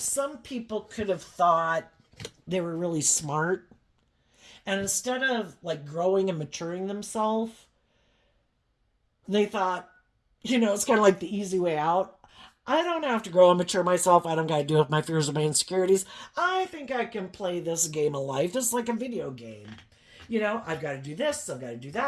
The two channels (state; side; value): identical; both; correlation 1.00